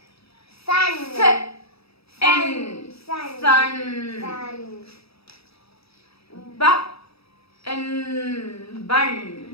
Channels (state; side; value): late; right; 0.77 ms